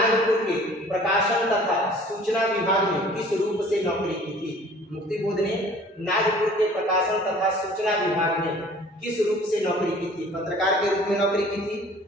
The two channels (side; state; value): both; normal; correlation 0.50